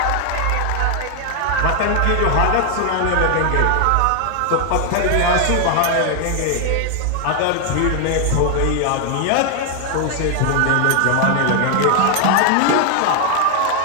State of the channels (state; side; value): different; both; correlation 0.00